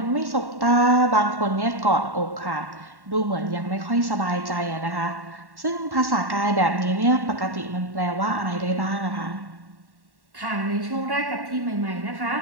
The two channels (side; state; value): left; late; 1.1 ms